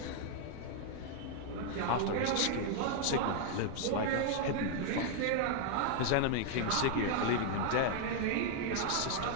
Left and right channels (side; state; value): both; different; correlation 0.00